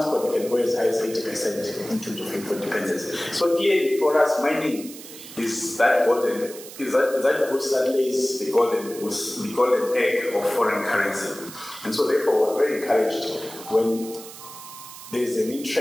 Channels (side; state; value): right; noise; hiss, 15 dB below the sound